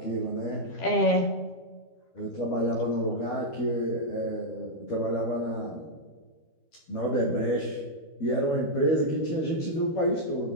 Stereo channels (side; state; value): right; late; 13 ms